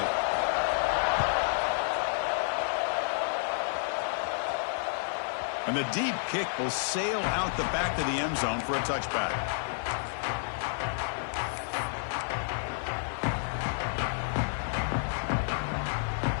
And the deep kick will sail out the back of the end zone for a touchback.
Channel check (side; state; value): right; silent; 56 dB below the other